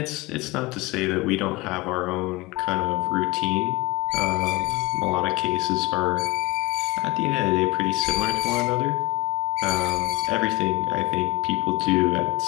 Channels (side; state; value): right; quieter; 21.7 dB